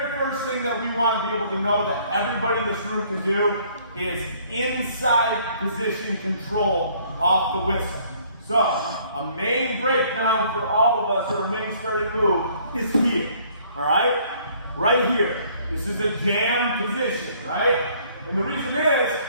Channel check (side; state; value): both; inverted; correlation -0.60